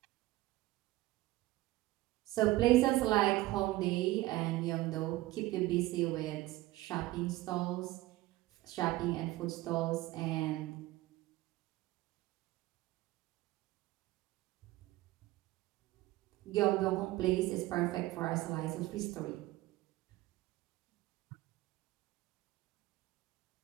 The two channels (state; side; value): quieter; left; 17.9 dB